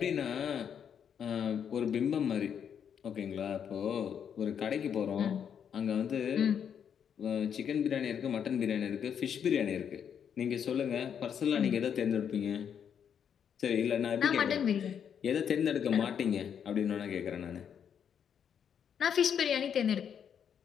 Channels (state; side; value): quieter; right; 8.1 dB